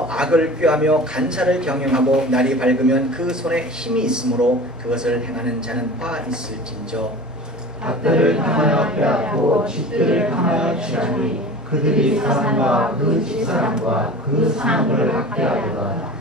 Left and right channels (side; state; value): both; normal; correlation 0.37